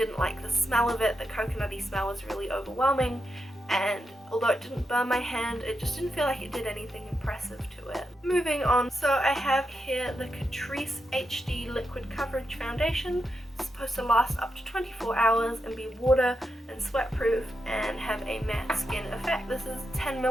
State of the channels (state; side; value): normal; both; correlation 0.86